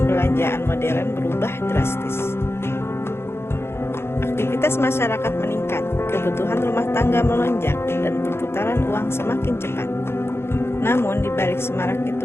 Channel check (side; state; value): right; late; 0.12 ms